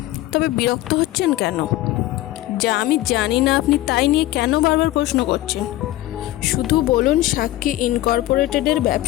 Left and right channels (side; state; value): right; quieter; 16.0 dB